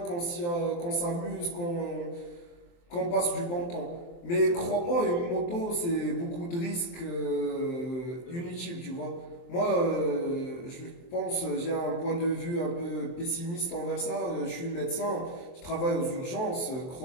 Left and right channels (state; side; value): late; right; 23 ms